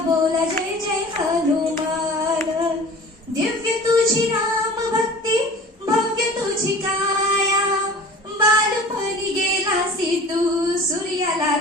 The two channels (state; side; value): normal; both; correlation 0.42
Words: बोला जय जय हनुमान, दिव्य तुझी राम भक्ती भव्य तुझी काया, बालपणी गेलासी तू सूर्याला